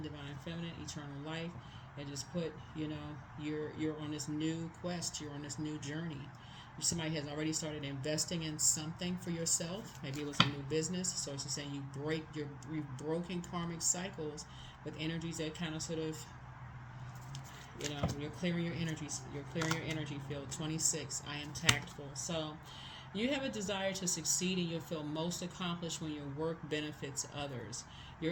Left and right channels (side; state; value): both; identical; correlation 1.00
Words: divine feminine, eternal life. And just put, you're on this new quest. You're on this new journey. Somebody has already started investing in something for yourself. Maybe it was a new business. So it's just saying you've broken karmic cycles with energies that kind of sort of, you're clearing your energies. You're clearing your energy field. 26. I am tactful. So You have a desire to succeed and you'll feel most accomplished when your work benefits others.